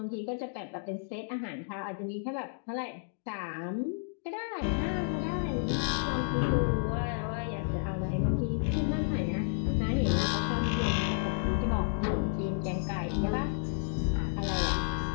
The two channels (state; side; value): silent; right; digital silence